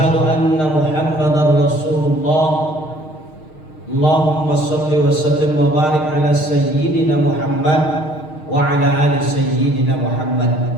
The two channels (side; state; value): right; late; 6.5 ms